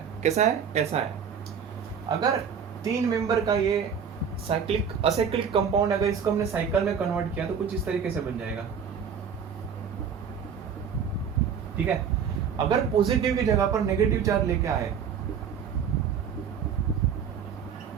कैसा है? ऐसा है। अगर 3 मेंबर का ये साइक्लिक असाइक्लिक कंपाउंड, अगर इसको हमने साइकिल में कन्वर्ट किया तो कुछ इस तरीके से बन जाएगा। ठीक है, अगर पॉजिटिव की जगह पर नेगेटिव चार्ज लेके आए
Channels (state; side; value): quieter; left; 7.1 dB